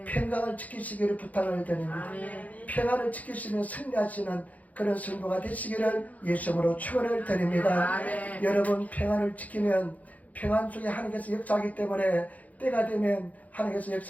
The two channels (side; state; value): right; late; 0.075 ms